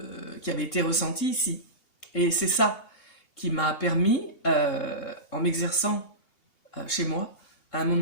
avait été ressentie ici. Et c'est ça qui m'a permis, en m'exerçant chez moi, à un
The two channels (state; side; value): late; right; 2.8 ms